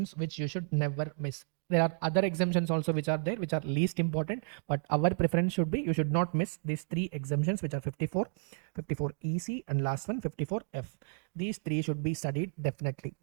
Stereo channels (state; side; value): silent; left; digital silence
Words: which you should never miss. There are other exemptions also which are there, which are least important, but our preference should be you should not miss these three exemptions, which are 54 EC and last one 54F. These three should be studied definitely.